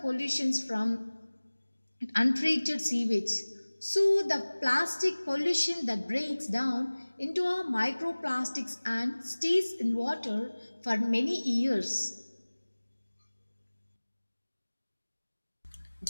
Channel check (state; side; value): inverted; both; correlation -1.00